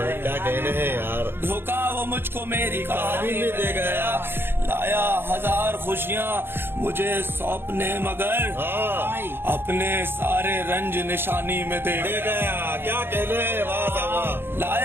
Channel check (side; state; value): left; late; 0.11 ms